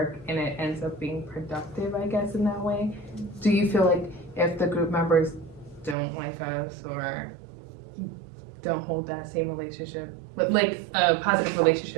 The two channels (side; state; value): left; drops out; at 6.0 s